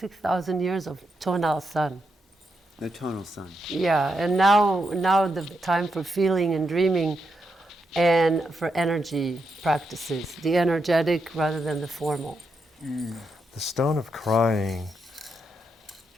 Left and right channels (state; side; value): normal; both; correlation 0.83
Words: years of tonal sun. The tonal sun. Yeah, and now the time for feeling and dreaming, and for energy practices, the energetic rather than the formal. The stone of crying